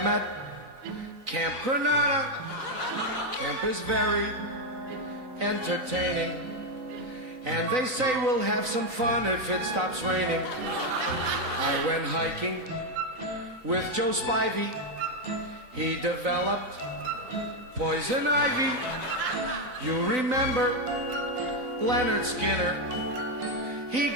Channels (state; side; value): late; left; 3.9 ms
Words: at Camp Granada. Camp is very entertaining, and they say we'll have some fun if it stops raining. I went hiking with Joe Spivey. He developed poison ivy. You remember Leonard Skinner? He